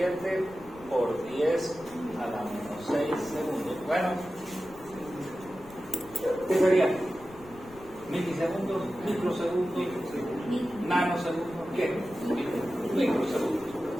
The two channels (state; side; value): noise; left; rumble, 21 dB below the sound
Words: por 10 a la menos 6 segundos. Bueno, ¿qué sería? ¿Milisegundos? ¿Microsegundos? ¿Nanosegundos? ¿Qué? Microsegundos.